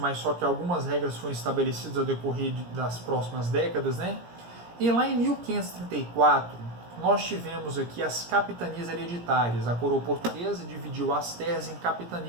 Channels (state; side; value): late; left; 17 ms